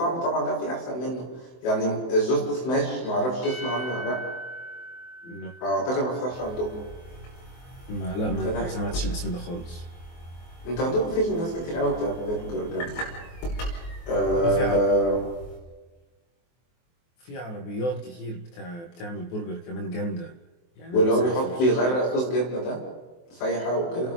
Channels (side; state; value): right; late; 23 ms